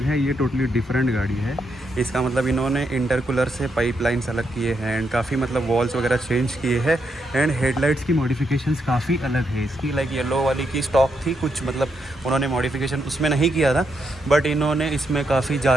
है, ये टोटली डिफरेंट गाड़ी है। इसका मतलब इन्होंने इंटरकूलर से पाइपलाइंस अलग किए हैं एंड काफ़ी मतलब वॉल्स वगैरह चेंज किए हैं एंड हेडलाइट्स की मॉडिफिकेशंस काफ़ी अलग है इसकी। लाइक येलो वाली की स्टॉक थी कुछ, मतलब उन्होंने मॉडिफिकेशन उसमें नहीं किया था, बट इन्होंने इसमें काफ़ी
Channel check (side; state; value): both; normal; correlation 0.80